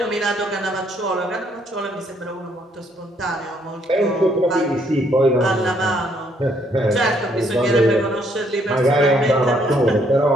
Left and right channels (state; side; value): normal; both; correlation 0.69